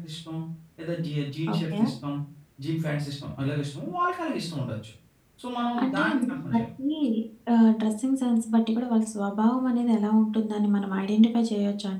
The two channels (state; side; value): identical; both; correlation 1.00